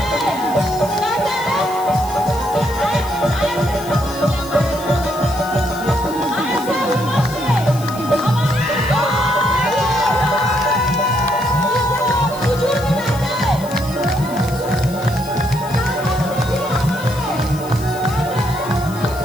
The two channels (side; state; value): left; noise; hiss, 17 dB below the sound